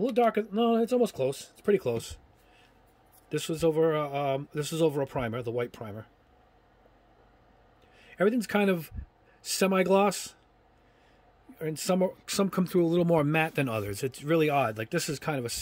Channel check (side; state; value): both; identical; correlation 1.00